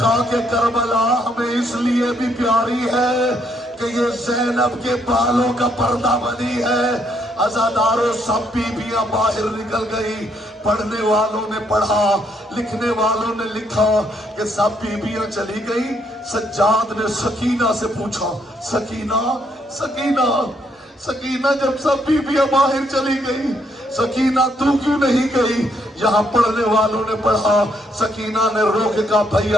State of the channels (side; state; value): both; normal; correlation 0.72